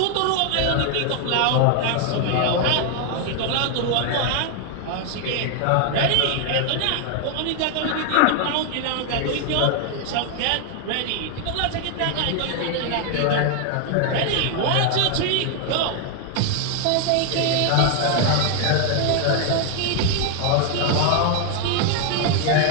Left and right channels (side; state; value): both; different; correlation 0.00